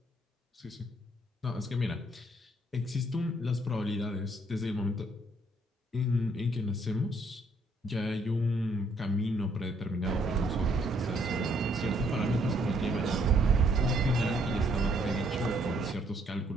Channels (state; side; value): normal; both; correlation 0.68